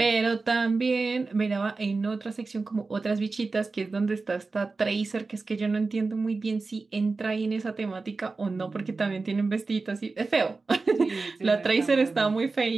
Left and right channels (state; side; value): quieter; left; 3.9 dB